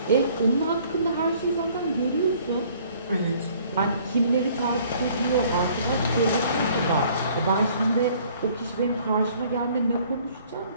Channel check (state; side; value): inverted; both; correlation -0.57